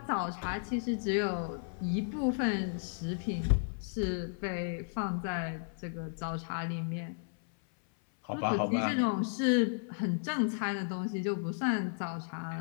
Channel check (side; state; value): right; silent; 55 dB below the other